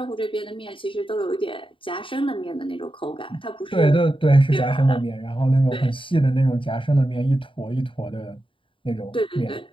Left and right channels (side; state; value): right; late; 0.25 ms